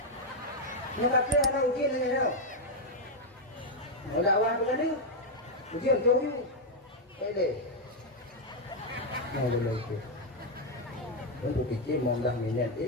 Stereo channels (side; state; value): both; normal; correlation 0.01